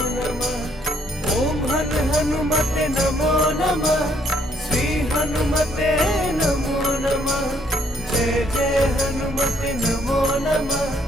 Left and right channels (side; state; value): both; normal; correlation 0.68